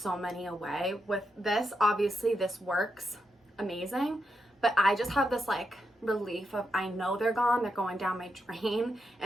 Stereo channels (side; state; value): both; normal; correlation 0.84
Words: many away. With this, obviously this works amazing, but I just have this like relief of, I know they're gone, they're going down my drain.